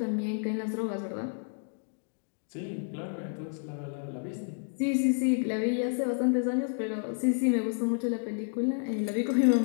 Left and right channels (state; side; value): silent; right; 58 dB below the other